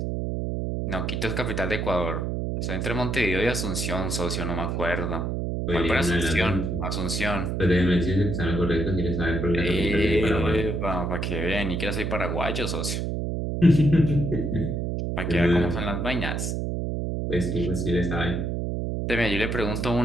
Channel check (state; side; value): noise; right; hum, 1 dB below the sound